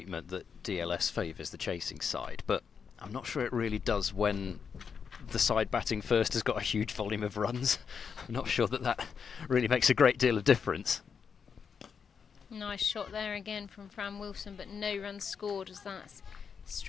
that DLS favours the chasing side, but I'm not sure it really does when the side batting first has got a huge volume of runs. I'm not sure that really makes a great deal of difference. Nice shot there again from Fran Wilson, but no runs scored as that's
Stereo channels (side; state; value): right; quieter; 6.4 dB